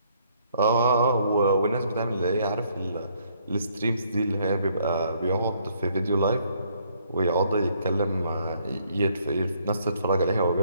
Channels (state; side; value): inverted; both; correlation -0.68